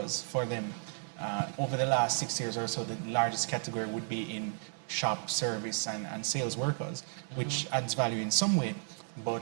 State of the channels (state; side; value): silent; left; 55 dB below the other